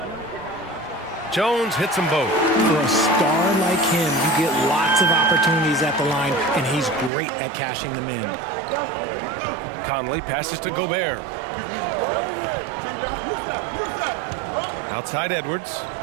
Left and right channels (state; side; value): drops out; left; at 7.1 s